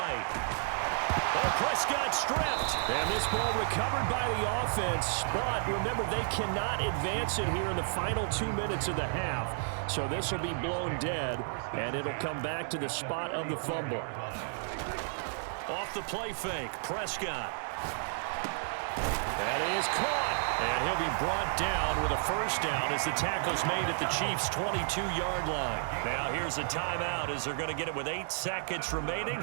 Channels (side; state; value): left; silent; digital silence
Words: Oh, Prescott stripped. And this ball recovered by the offense. But remember, they cannot advance it here in the final 2 minutes of the half. So this will be blown dead, and it'll come back to the spot of the fumble. Off the play fake, Prescott. That is caught. And he'll be brought down with a first down as the tackle's made at the Chiefs' 22-yard line. Now here's a timeout as they're going to get it with 8 seconds remaining